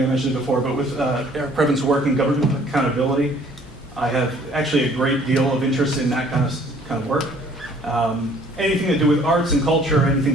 it before, but with Eric Previn's work in government accountability, I have actually a great deal of interest in that kind of work. Anything to do with arts and culture, anything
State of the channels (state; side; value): normal; both; correlation 0.57